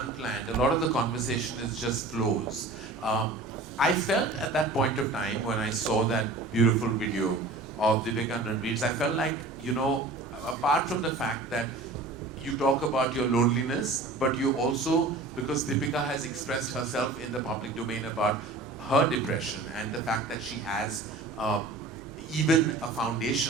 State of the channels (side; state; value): left; quieter; 3.2 dB